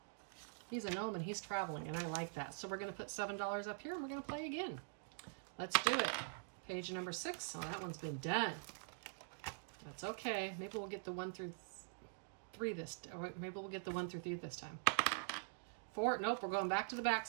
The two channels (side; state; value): left; silent; digital silence